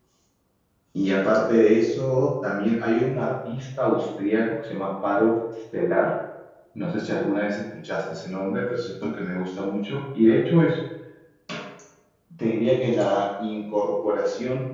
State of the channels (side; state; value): both; identical; correlation 1.00